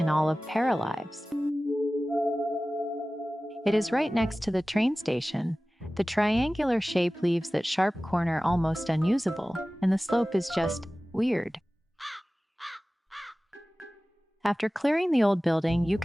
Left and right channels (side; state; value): both; normal; correlation 0.97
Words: all of Paralives. It is right next to the train station. The triangular shape leaves that sharp corner almost unusable, and the slope is just weird. After clearing the old building, you